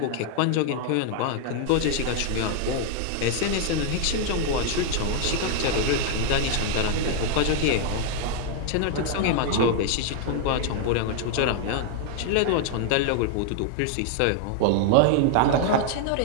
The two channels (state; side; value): different; both; correlation 0.00